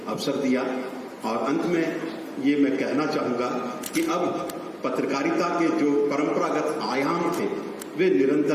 अवसर दिया। और अंत में ये मैं कहना चाहूंगा कि अब पत्रकारिता के जो परंपरागत आयाम थे वे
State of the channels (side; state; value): both; identical; correlation 1.00